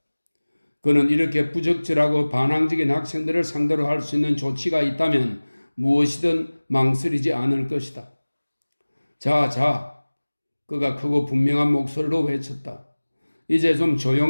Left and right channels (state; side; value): inverted; both; correlation -1.00